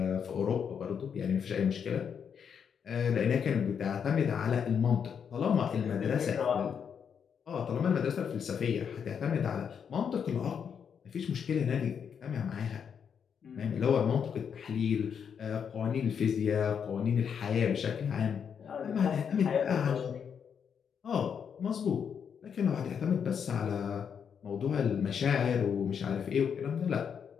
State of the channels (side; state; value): right; quieter; 7.3 dB